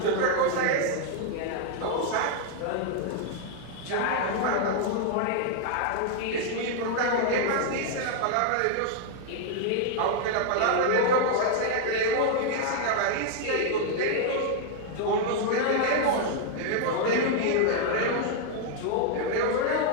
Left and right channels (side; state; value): both; different; correlation 0.00